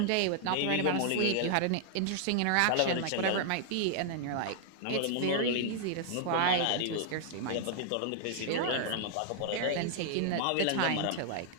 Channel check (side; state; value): both; different; correlation 0.00